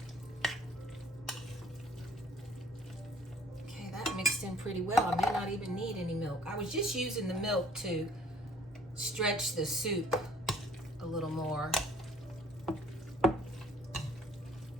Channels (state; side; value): normal; both; correlation 0.55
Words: Okay, that mixed in pretty well. I may not even need any milk. I was just using the milk to stretch the soup a little more.